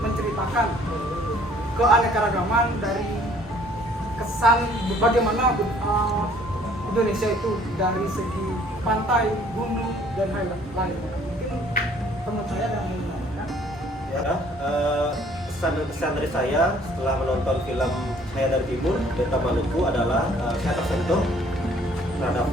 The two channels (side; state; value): both; normal; correlation 0.58